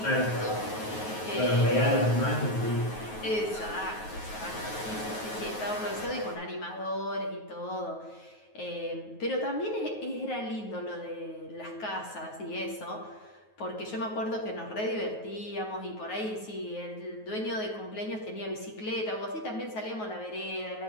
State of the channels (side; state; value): right; late; 9.4 ms